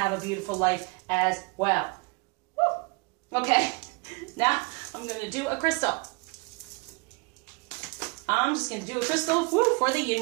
a beautiful life as well. Woo. Okay, now I'm going to do a crystal. I'm just going to do a crystal for the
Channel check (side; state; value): left; quieter; 28.9 dB